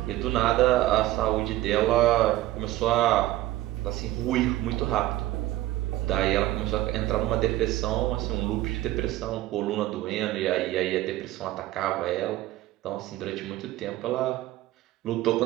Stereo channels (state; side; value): quieter; left; 15.7 dB